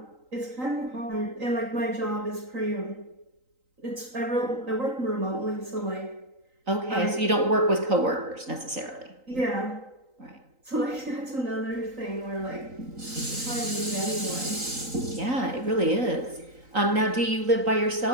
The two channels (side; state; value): left; late; 3.9 ms